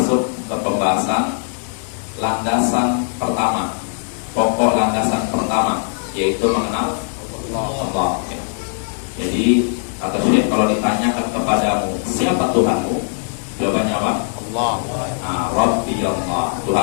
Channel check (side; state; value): right; silent; digital silence